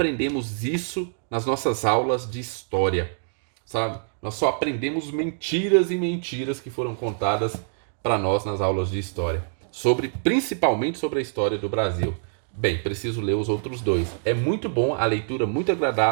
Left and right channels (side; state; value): left; silent; digital silence